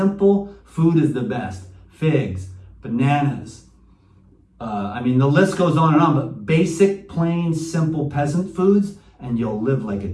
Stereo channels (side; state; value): both; identical; correlation 1.00